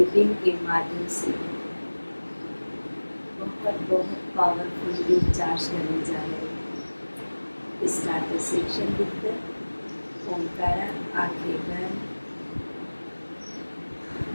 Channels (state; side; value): inverted; both; correlation -1.00